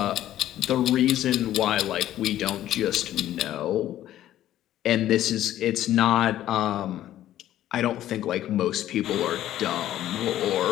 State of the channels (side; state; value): right; quieter; 12.9 dB